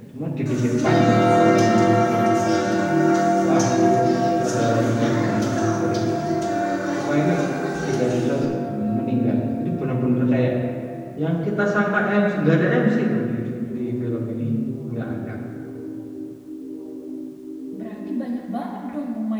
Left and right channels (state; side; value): identical; both; correlation 1.00